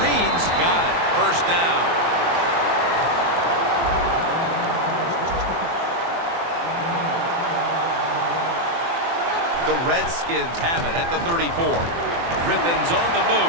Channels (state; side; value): late; left; 24 ms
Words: Reed's got it. First down. The Redskins have it at the 34. Griffin's on the